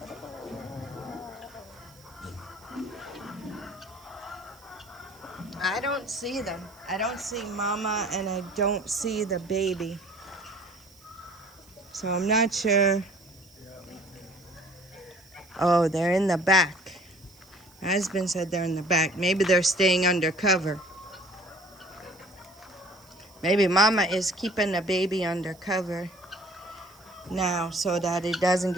I don't see them. I don't see Mama and I don't see the baby. So I'm not sure. Oh, they're in the back. My husband said they're in the back. Maybe they're staying under cover. Maybe Mama is keeping the baby under cover now so that it doesn't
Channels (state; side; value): noise; right; hiss, 26 dB below the sound